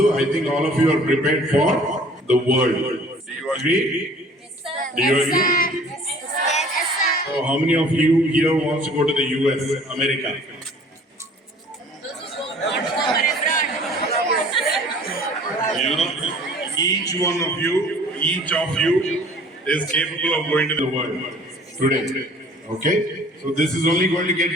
I think all of you are prepared for the world. Do you agree? Do you agree? So how many of you here wants to go to the US, America? You know, each of you is capable of going to the world today. Okay, so this is only going to get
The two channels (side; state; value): both; normal; correlation 0.51